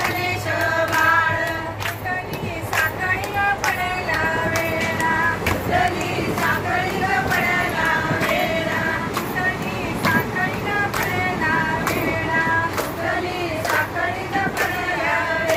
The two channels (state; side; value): identical; both; correlation 1.00